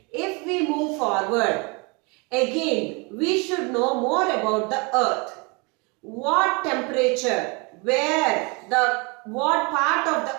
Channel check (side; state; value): left; quieter; 29.8 dB